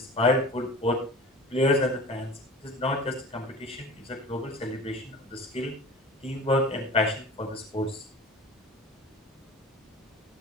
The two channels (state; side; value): normal; both; correlation 0.38